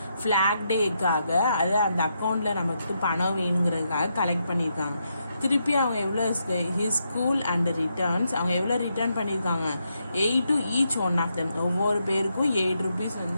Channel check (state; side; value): inverted; both; correlation -0.81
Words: ஃபிளாக் டேக்காக, அது அந்த அக்கௌண்ட்ல நமக்கு பணம் வேணுங்கிறதுக்காக கலெக்ட் பண்ணியிருக்காங்க. திருப்பி அவங்க எவ்வளோ ஹிஸ் ஸ்கூல் அண்ட் ரிட்டர்ன்ஸ், அவங்க எவ்வளோ ரிட்டர்ன் பண்ணியிருக்காங்க, 8 to each one of them. ஒவ்வொரு பேருக்கும் 8 rupees